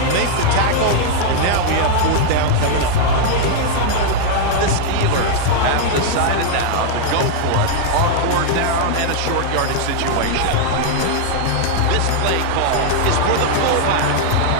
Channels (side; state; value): both; different; correlation 0.00